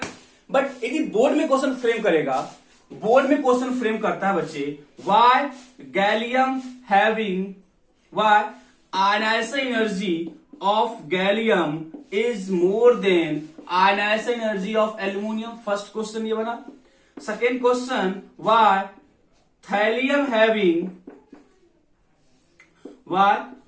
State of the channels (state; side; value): identical; both; correlation 1.00